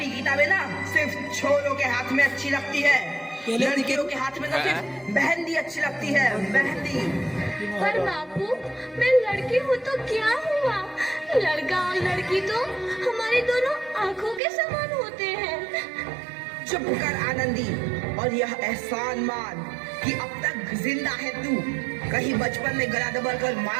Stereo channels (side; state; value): left; drops out; at 14.4 s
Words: किताबें ना सिर्फ छोरों के हाथ में अच्छी लगती है, लड़कियों के हाथ में तो सिर्फ मेहंदी अच्छी लगती है, मेहंदी। पर बापू, मैं लड़की हूँ तो क्या हुआ? लड़का और लड़की तो हमारी दोनों आंखों के समान होते हैं। चुप कर आनंदी, और यह एहसान मान कि अब तक जिंदा है तू। कहीं बचपन में गला दबाकर